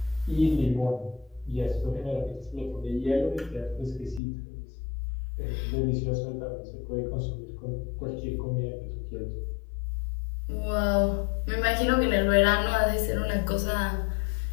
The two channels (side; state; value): right; drops out; at 4.2 s